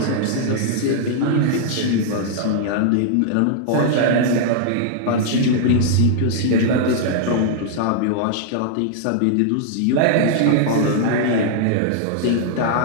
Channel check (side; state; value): both; different; correlation -0.01